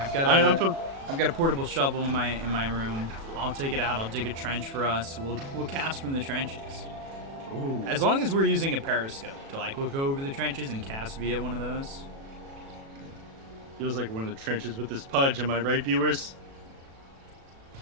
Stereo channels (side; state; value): left; late; 36 ms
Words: I've got a portable shovel in my room. I'll take it out. I'll dig a trench for us. We'll cast from the trenches. Ooh. As long as we're using a periscope to like look over the trenches and cast via one of those. Feels like we're in the trenches with this Pudge. Am I right, viewers?